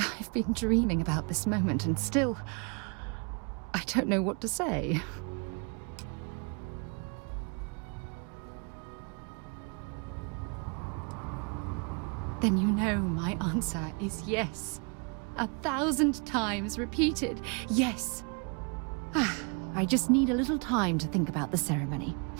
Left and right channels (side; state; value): left; quieter; 35.5 dB